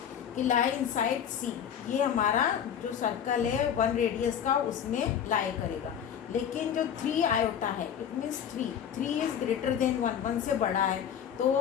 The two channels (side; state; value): right; quieter; 8.7 dB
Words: कि लाई इनसाइड C, ये हमारा जो सर्कल है 1 रेडियस का उसमें लाई करेगा। लेकिन जो 3 आयोटा है, it means 3 is greater than 1 से बड़ा है,